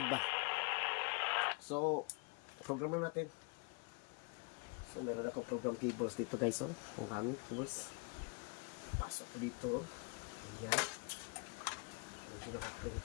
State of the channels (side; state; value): right; quieter; 31.8 dB